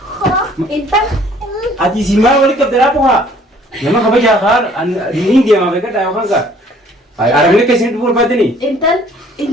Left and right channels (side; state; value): both; normal; correlation 0.57